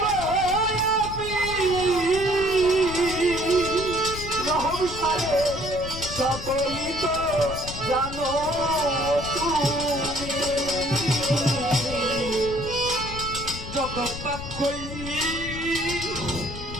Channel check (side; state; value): left; noise; rumble, 9 dB below the sound